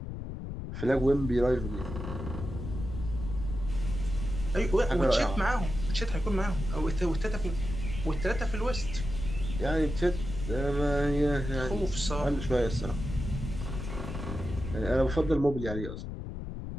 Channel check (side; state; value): left; noise; rumble, 7 dB below the sound